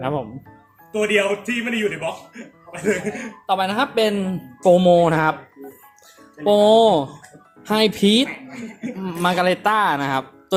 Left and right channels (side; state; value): both; identical; correlation 1.00